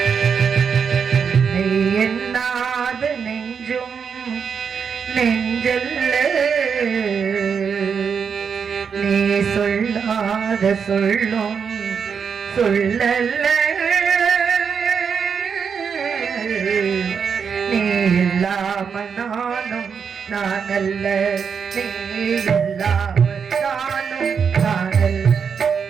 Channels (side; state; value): left; quieter; 6.5 dB